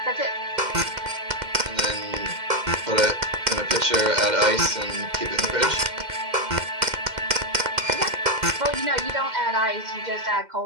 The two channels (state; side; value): late; left; 2.1 ms